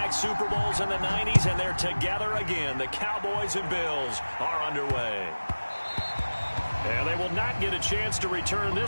Super Bowls in the 90s, and they're together again. The Cowboys and Bills are underway. And they will not get a chance to return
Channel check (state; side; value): inverted; both; correlation -1.00